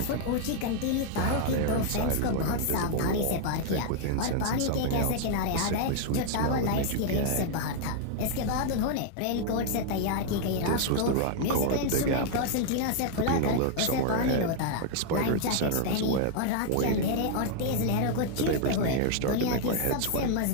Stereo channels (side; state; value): both; different; correlation 0.00